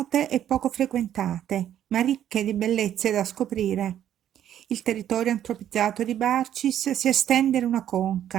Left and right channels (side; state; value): left; quieter; 10.7 dB